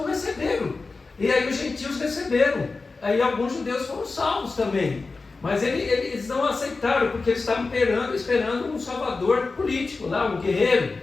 receberam. E aí os gentios receberam. Aí alguns judeus foram salvos também. Mas eles não aceitaram, porque eles estavam esperando um salvador político lá, um guerreiro.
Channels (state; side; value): quieter; right; 3.9 dB